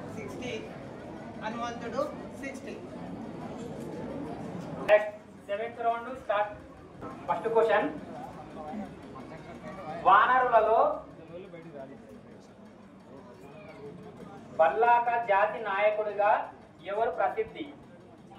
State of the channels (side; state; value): both; identical; correlation 1.00